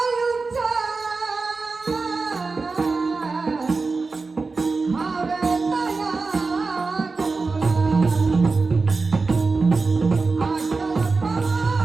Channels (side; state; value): left; quieter; 4.0 dB